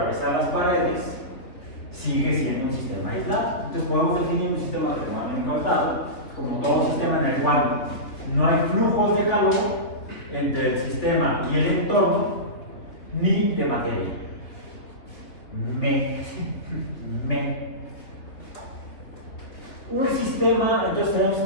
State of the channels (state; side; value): late; right; 3.4 ms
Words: las paredes, sigue siendo un sistema aislado. Entonces podemos definir un sistema termodinámico aislado como todo sistema en el cual no hay flujos de calor entre el sistema y el entorno, ni de materia. Un sistema, entonces tenemos un